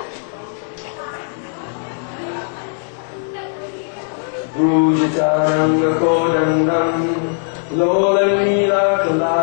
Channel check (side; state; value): right; silent; digital silence